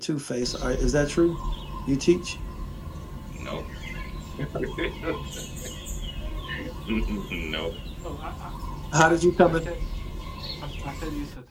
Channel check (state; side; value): identical; both; correlation 1.00